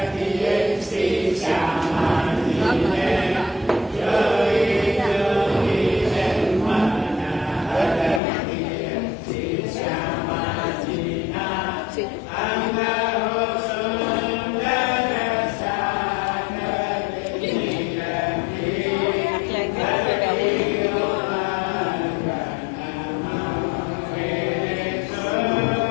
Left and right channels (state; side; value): drops out; right; at 8.2 s